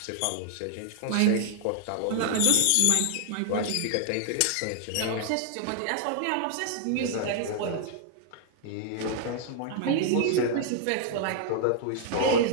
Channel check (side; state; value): both; different; correlation 0.00